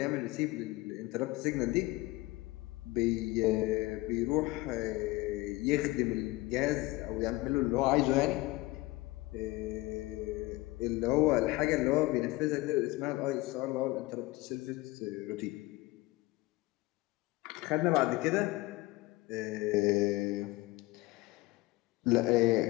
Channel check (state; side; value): quieter; right; 20.5 dB